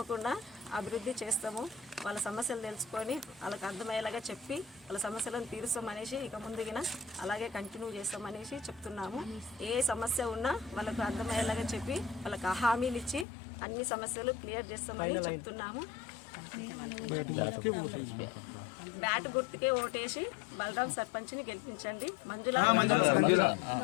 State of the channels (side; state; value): right; drops out; at 13.2 s